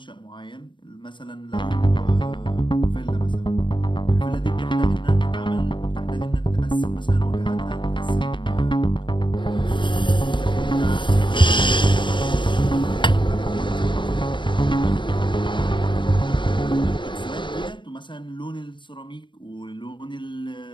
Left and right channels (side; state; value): right; late; 0.23 ms